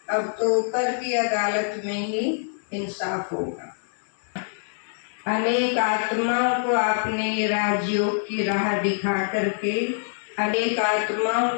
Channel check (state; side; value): silent; right; digital silence